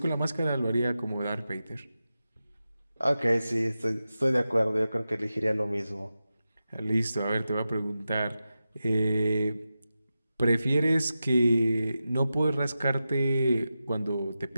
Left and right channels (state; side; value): inverted; both; correlation -0.92